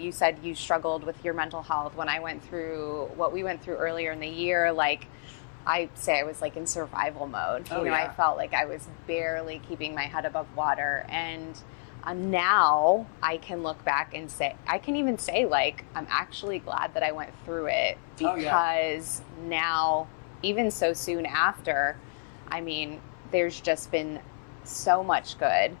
said you struggled with your mental health when I went through what we went through earlier in the year. Like, I say I was like in survival mode. Oh, yeah. I felt like I was barely keeping my head above water. And now I can look back and say, I can even say, like, I'm actually glad that I went through it. Because Oh, yeah. now, even so soon after, I mean, there's just been so much good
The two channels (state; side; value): silent; right; 57 dB below the other